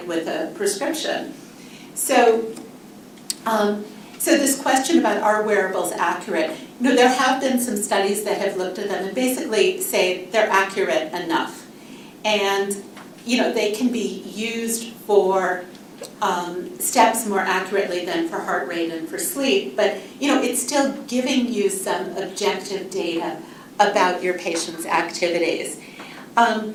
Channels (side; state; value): both; identical; correlation 1.00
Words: with a prescription. So this question about, are wearables accurate? There have been some studies that have looked at them and basically say they're accurate enough. And, they can be used for steps more accurately than for heart rate and for sleep, but it's still giving you some objective data about your patient's activities.